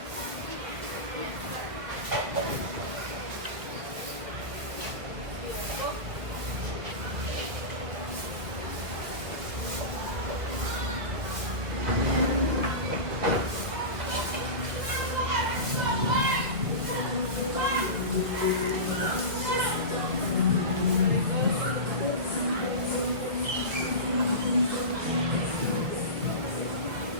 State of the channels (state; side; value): late; left; 1.6 ms